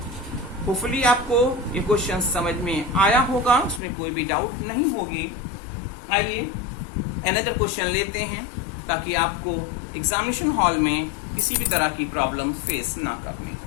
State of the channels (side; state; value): right; drops out; at 3.8 s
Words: होपफुली आपको ये क्वेश्चन समझ में आया होगा, उसमें कोई भी डाउट नहीं होगी। आइए अनदर क्वेश्चन लेते हैं, ताकि आपको एग्जामिनेशन हॉल में किसी भी तरह की प्रॉब्लम फेस ना करनी